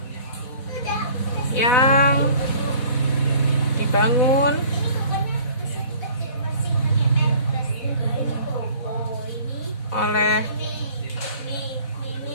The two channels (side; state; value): right; late; 4.1 ms